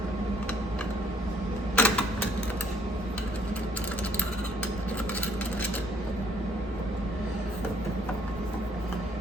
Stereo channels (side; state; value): both; normal; correlation 0.64